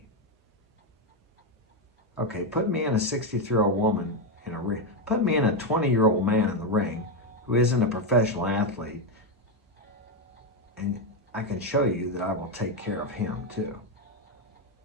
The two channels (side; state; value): both; normal; correlation 0.07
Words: Okay, put me in a 63-year-old woman in a ring. Put me in a 20-year-old man in the ring who isn't a professional athlete, and I can show you that I will take care of him too.